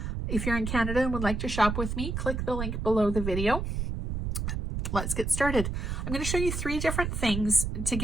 If you're in Canada and would like to shop with me, click the link below the video. Let's get started. I'm going to show you 3 different things to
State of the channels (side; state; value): right; noise; rumble, 3 dB below the sound